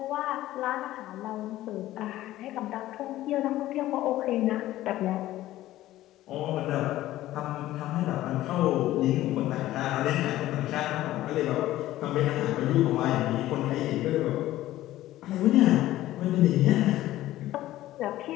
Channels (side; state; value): right; quieter; 15.0 dB